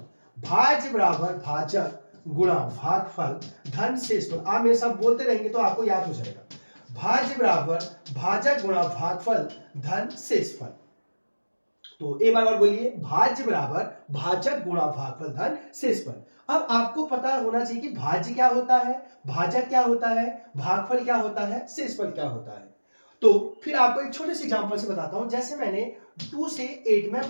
भाज्य बराबर भाजक गुणा भागफल धन शेषफल। आप मेरे साथ बोलते रहेंगे तो आपको याद हो जाएगा। भाज्य बराबर भाजक गुणा भागफल धन शेषफल। तो एक बार और बोलिए, भाज्य बराबर भाजक गुणा भागफल धन शेषफल। अब आपको पता होना चाहिए कि भाज्य क्या होता है, भाजक क्या होता है, भागफल क्या होता है, शेषफल क्या होता है। तो फिर आपको एक छोटे से एग्जांपल से बताता हूं। जैसे मैंने 2 से 8 में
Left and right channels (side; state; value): both; inverted; correlation -1.00